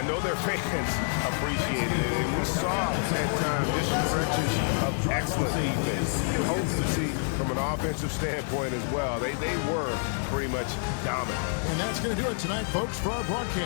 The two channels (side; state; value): right; silent; digital silence